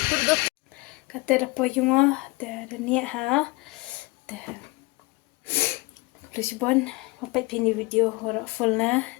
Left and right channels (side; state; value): right; quieter; 24.1 dB